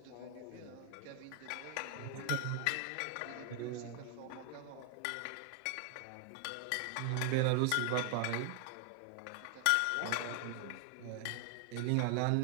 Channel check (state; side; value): different; both; correlation 0.00